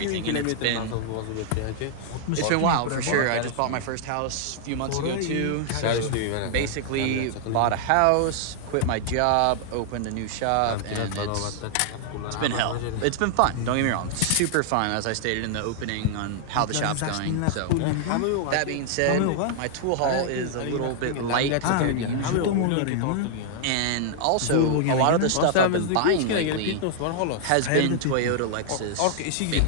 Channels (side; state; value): both; different; correlation -0.01